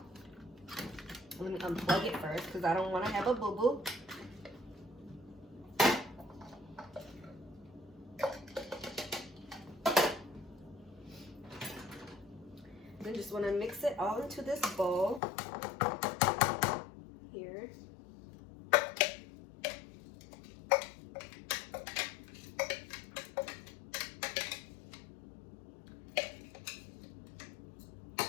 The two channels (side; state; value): right; drops out; at 15.2 s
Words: Let me unplug it first because I don't want to have a boo-boo. Then just want to mix it all into this bowl here.